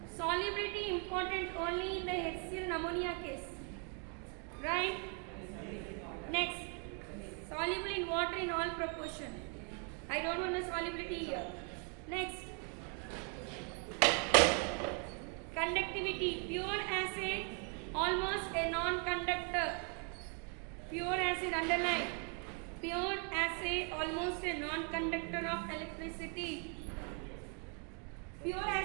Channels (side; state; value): left; quieter; 39.8 dB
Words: Solubility important only in the HCl and ammonia case, right? Next, soluble in water in all proportion. I don't want the solubility here. Next, conductivity, pure acid almost a non-conductor. Pure acid, underline. Pure acid almost a non-conductor of electricity. Pure